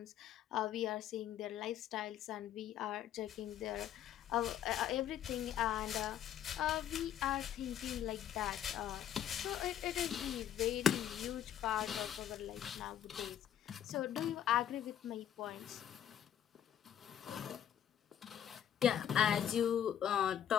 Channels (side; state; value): right; quieter; 10.0 dB